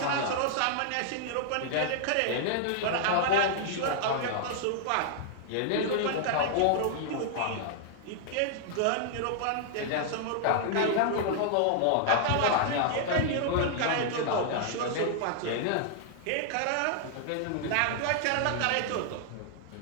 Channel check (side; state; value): both; different; correlation -0.01